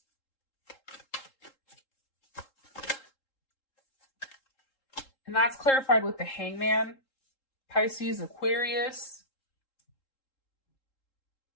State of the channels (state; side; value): late; right; 3.7 ms